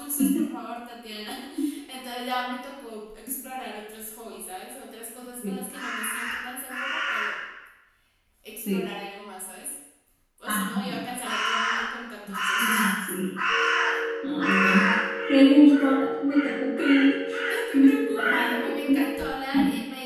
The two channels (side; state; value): both; identical; correlation 1.00